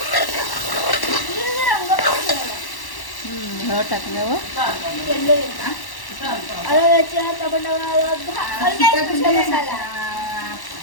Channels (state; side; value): late; right; 1.1 ms